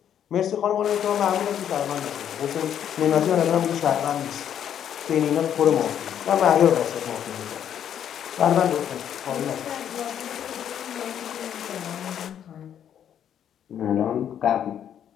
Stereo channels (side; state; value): right; quieter; 9.5 dB